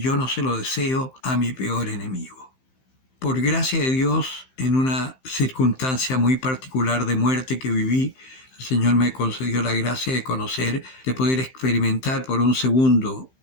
no se lo deseo a mi peor enemigo. Por gracia de Dios, en una circunstancia muy particular de muerte que viví, el Señor me concedió la gracia de conocer, de poder experimentar por un segundo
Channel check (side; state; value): right; late; 15 ms